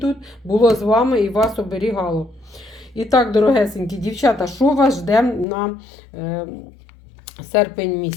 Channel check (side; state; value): right; drops out; at 5.5 s